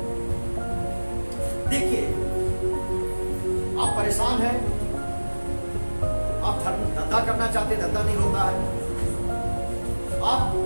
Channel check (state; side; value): inverted; both; correlation -1.00